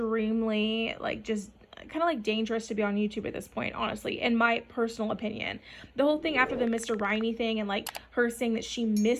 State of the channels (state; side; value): identical; both; correlation 1.00